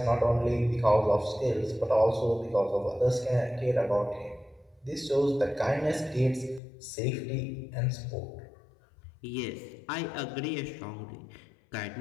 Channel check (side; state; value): right; drops out; at 6.6 s